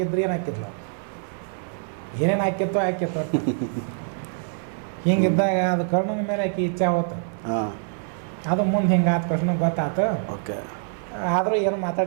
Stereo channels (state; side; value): silent; left; 62 dB below the other